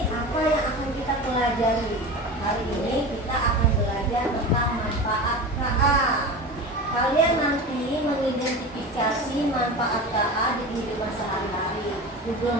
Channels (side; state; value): both; normal; correlation 0.30